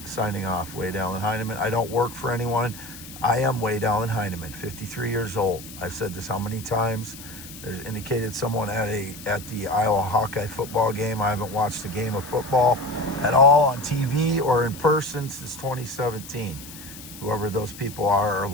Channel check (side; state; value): left; noise; hiss, 15 dB below the sound